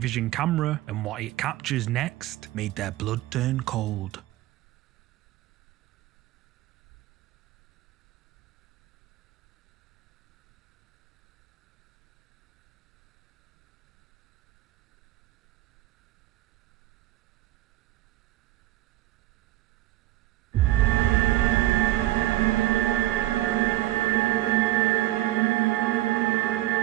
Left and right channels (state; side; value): quieter; left; 16.2 dB